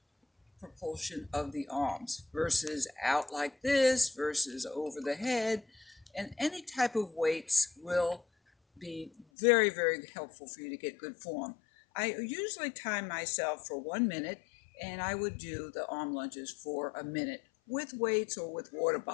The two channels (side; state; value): right; drops out; at 9.2 s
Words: propulsion of the arms versus out like this versus over the head. And any type of weights will be very, very helpful for you to get good form. I usually time myself for 1 minute, and I would do the arm lunges for a minute with weights or with water